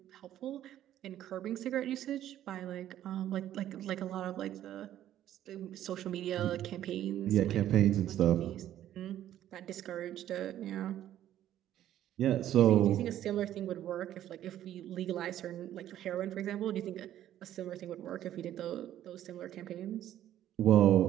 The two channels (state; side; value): quieter; left; 12.1 dB